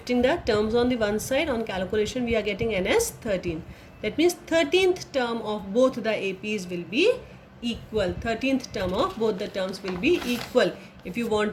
the terms on the one side, on calculation we are getting n as 13. That means 13th term of both the APs will be equal. 13th term of both the terms will be equal. If you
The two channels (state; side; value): identical; both; correlation 1.00